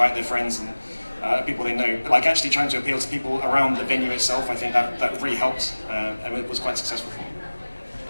their friends and people they know. But like actually trying to appeal to people around the venue itself, I think that really helped, and it was quite successful for me.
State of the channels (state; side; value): inverted; both; correlation -1.00